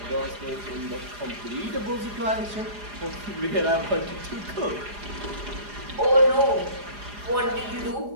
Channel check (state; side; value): late; left; 4.9 ms